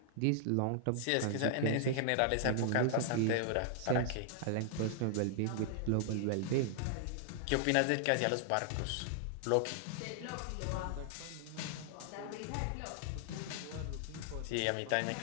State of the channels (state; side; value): different; both; correlation -0.01